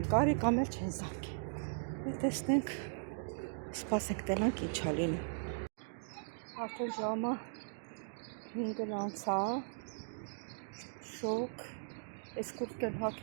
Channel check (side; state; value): left; silent; digital silence